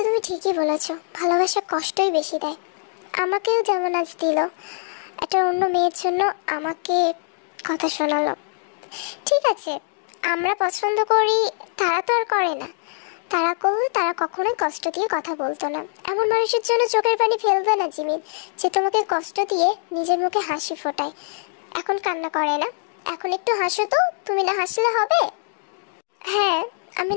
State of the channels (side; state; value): right; silent; digital silence